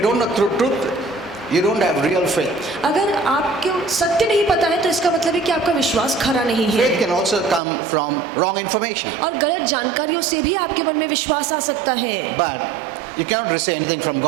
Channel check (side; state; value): left; drops out; at 7.6 s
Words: you don't know truth, you don't have real faith. अगर आपको सत्य नहीं पता है तो इसका मतलब है कि आपका विश्वास खरा नहीं है। Faith can also come from wrong information. और गलत जानकारियों से भी आपके मन में विश्वास आ सकता है। But you cannot receive anything from